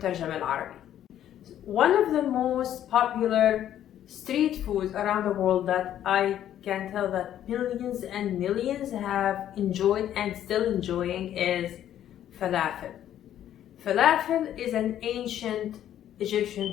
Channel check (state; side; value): quieter; right; 11.2 dB